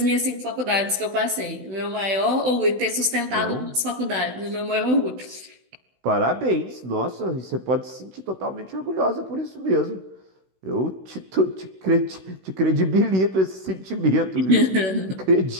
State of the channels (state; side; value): late; left; 16 ms